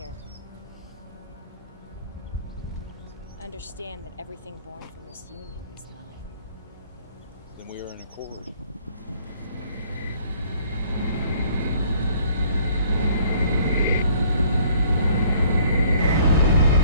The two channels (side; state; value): both; inverted; correlation -0.59